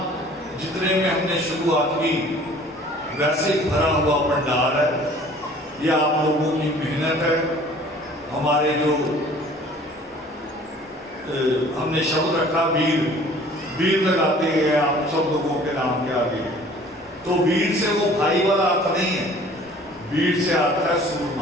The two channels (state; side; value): normal; both; correlation 0.51